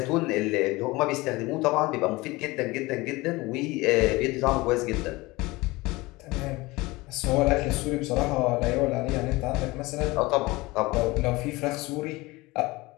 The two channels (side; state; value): right; quieter; 21.7 dB